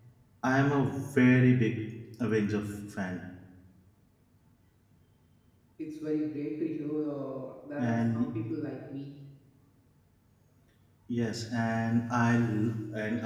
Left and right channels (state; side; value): identical; both; correlation 1.00